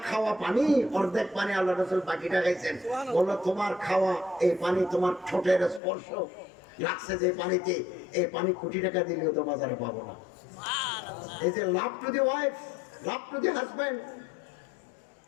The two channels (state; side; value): drops out; right; at 5.8 s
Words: খাওয়া পানি অর্ধেক পানি আল্লাহ রাসূল বাকিটা খাইছেন। বললো তোমার খাওয়া এই পানি তোমার ঠোঁটের স্পর্শ লাগছে যে পানিতে, এই পানি কোটি টাকা দিলেও তো বাজারে পাবো না। এই যে love to the wife, love to the husband,